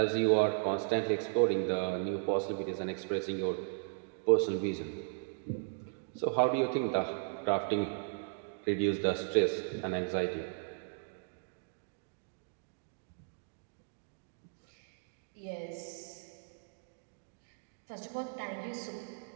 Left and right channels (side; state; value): left; silent; digital silence